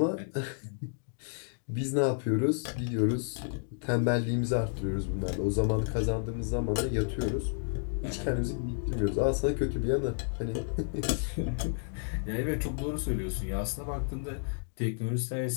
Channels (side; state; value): right; silent; digital silence